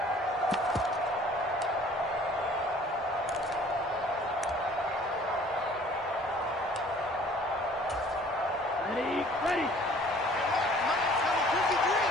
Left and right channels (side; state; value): both; normal; correlation 0.52